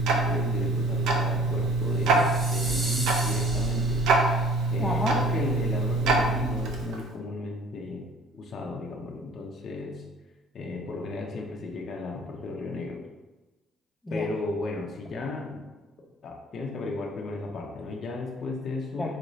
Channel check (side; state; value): both; normal; correlation 0.50